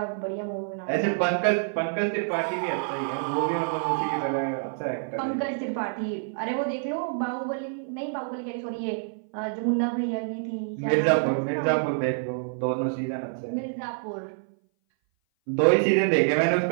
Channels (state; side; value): silent; left; 58 dB below the other